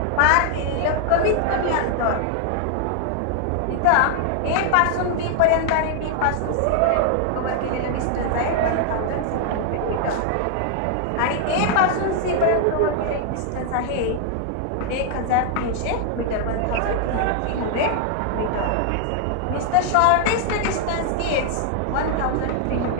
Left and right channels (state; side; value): different; both; correlation 0.00